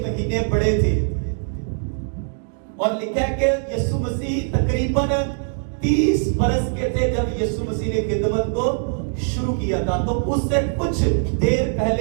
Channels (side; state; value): left; silent; digital silence